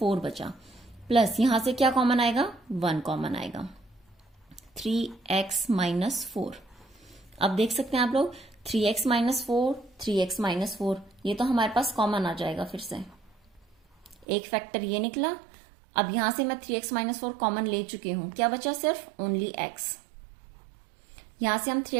बचा, प्लस यहां से क्या कॉमन आएगा, 1 कॉमन आएगा, 3x -4। अब देख सकते हैं आप लोग 3x -4, 3x -4, ये तो हमारे पास कॉमन आ जाएगा। फिर से एक फैक्टर ये निकला। अब यहां से मैं 3x -4 कॉमन ले चुकी हूं, क्या बचा, सिर्फ ओनली x। यहां से हम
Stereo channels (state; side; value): drops out; left; at 14.2 s